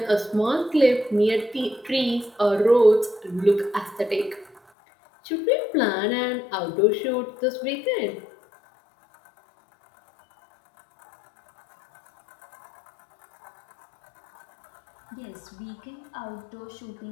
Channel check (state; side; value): drops out; right; at 4.6 s